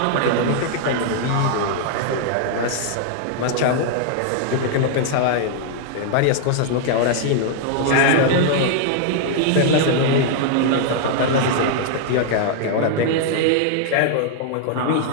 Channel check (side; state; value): both; different; correlation -0.01